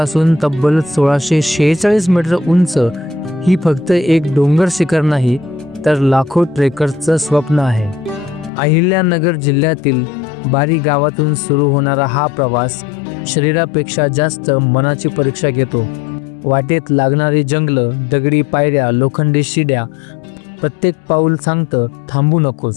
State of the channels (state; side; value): drops out; right; at 8.5 s